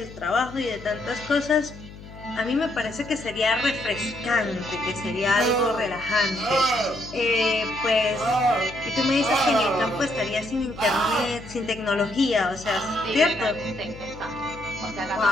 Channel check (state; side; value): noise; left; hum, 16 dB below the sound